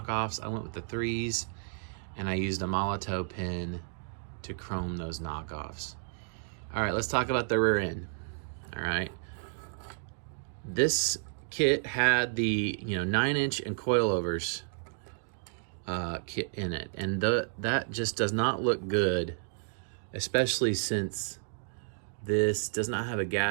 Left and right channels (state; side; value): silent; left; digital silence